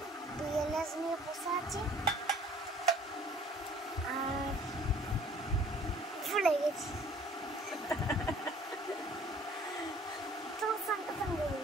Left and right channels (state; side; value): normal; both; correlation 0.53